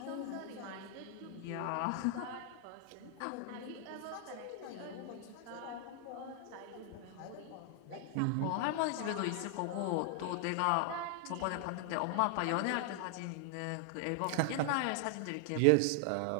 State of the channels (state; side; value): different; both; correlation 0.00